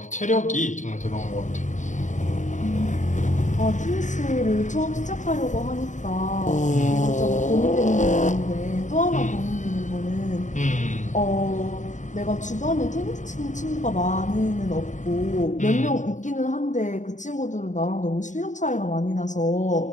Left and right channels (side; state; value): right; late; 0.36 ms